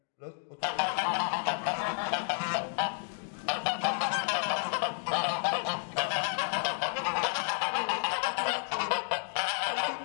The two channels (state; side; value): silent; right; 57 dB below the other